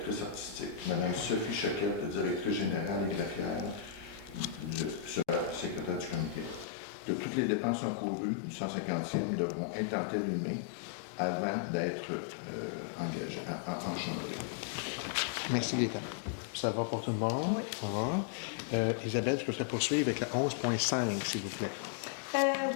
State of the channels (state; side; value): drops out; right; at 6.7 s